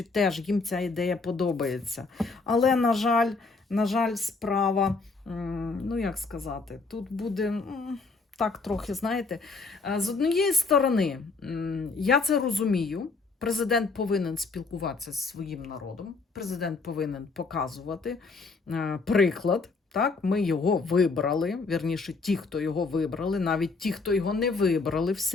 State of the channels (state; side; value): quieter; right; 4.1 dB